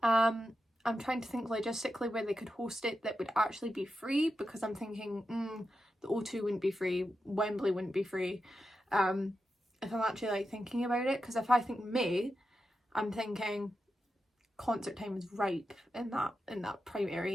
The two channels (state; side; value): normal; both; correlation 0.89